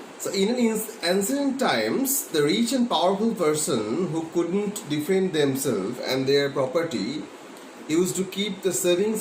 So in ancient times, the rich and powerful person who couldn't defend themselves and their property used to keep the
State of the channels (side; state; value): both; identical; correlation 1.00